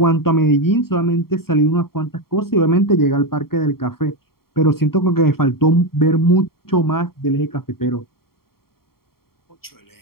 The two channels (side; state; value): right; late; 0.93 ms